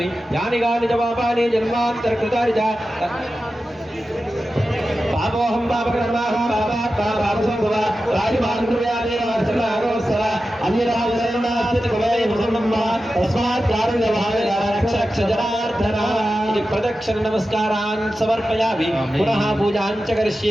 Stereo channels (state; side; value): normal; both; correlation 0.93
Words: యాని గాని జవాబాని జన్మాంతర కృతాని చ పాపోహం పాపకర్మాహం పాపాత్మా రాజమానుయాదేవర ప్రదక్షిణ నమస్కారాన్ సమర్పయామి పునః పూజాం చ